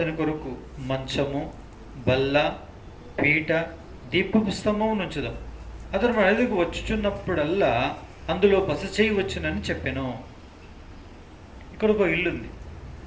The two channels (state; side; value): identical; both; correlation 1.00